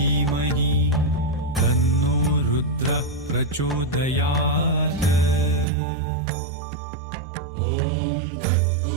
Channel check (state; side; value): drops out; left; at 5.7 s